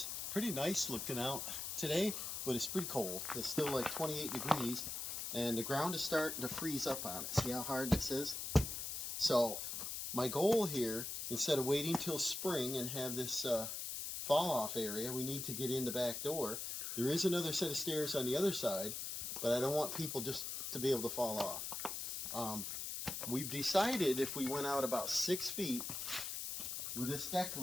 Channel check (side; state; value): left; noise; hiss, 4 dB below the sound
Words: Pretty nice looking out today, but it's pretty cold. It's still like 28 degrees, and the ground is starting to freeze up on it. See how hard this is? So my goal here, instead of waiting till spring and have this fall off area, we need to get in the back door. There is another set of stairs on the other side, but I don't want people just to be able to fall off. We've decided if we went out about 6 feet with this deck